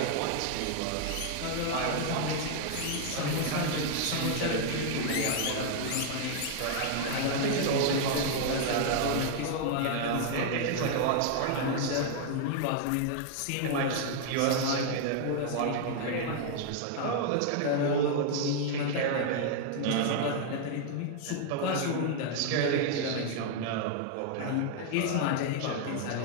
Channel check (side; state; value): both; different; correlation 0.00